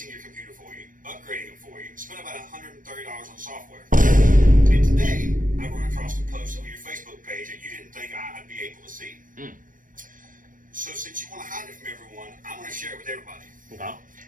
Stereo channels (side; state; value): left; late; 0.39 ms